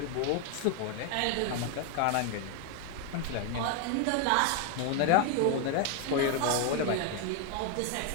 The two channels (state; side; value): different; both; correlation 0.01